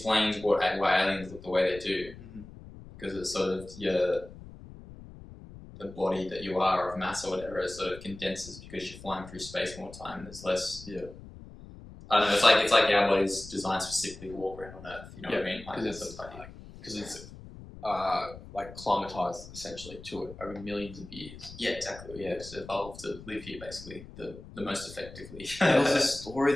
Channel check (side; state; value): left; noise; rumble, 16 dB below the sound